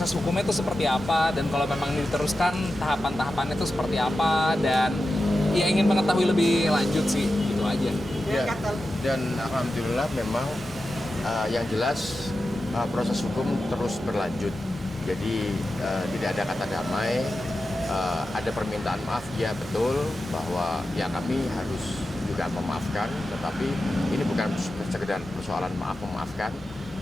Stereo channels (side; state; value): both; normal; correlation 0.92